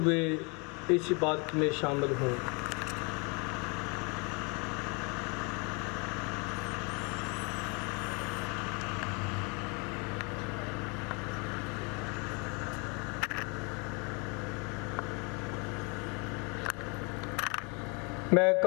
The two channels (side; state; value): right; quieter; 31.8 dB